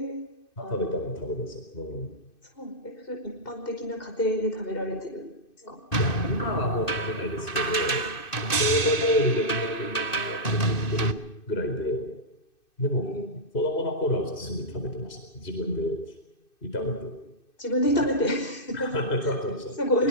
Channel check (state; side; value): late; right; 2.6 ms